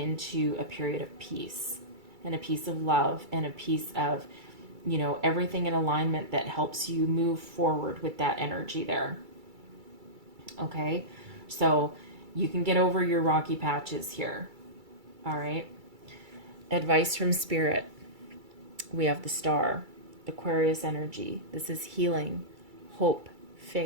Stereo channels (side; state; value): left; late; 2.3 ms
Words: a period of peace and a piece of love and a piece of, you know, everything in alignment that helps you move forward with that energy there. Okay, so you can get over your rocky patches here. All right. Advice from Spirit. We have the Star, Aquarius energy. This is healing, hope,